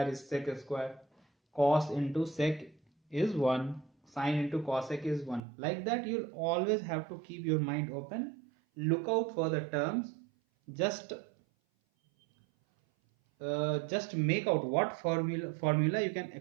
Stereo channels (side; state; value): left; drops out; at 5.4 s